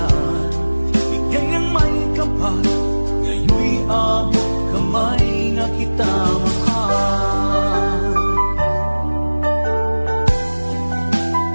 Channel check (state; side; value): inverted; both; correlation -1.00